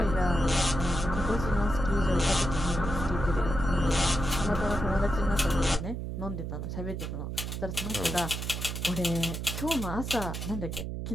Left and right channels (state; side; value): noise; right; hum, 5 dB below the sound